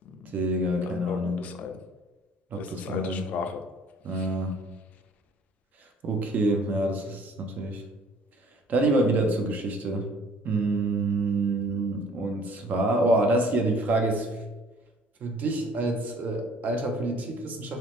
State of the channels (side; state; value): both; normal; correlation 0.54